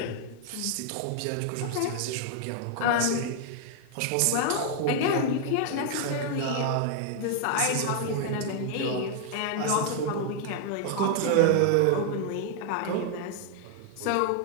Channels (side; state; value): both; different; correlation 0.00